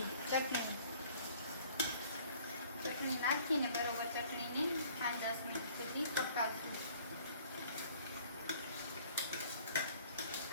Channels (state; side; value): inverted; both; correlation -0.55